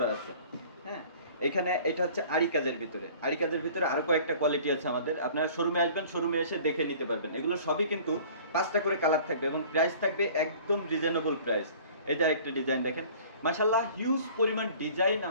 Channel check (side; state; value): both; inverted; correlation -0.48